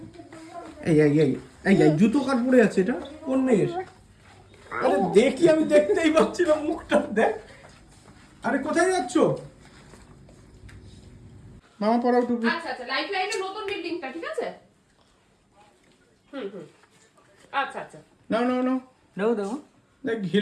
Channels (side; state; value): both; identical; correlation 1.00